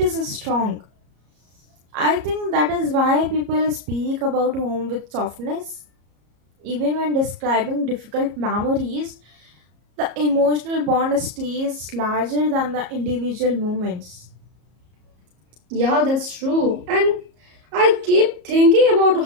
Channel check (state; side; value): late; left; 34 ms